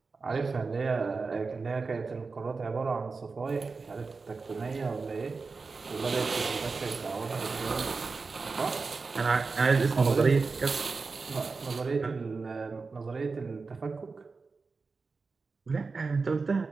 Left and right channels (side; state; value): left; quieter; 4.4 dB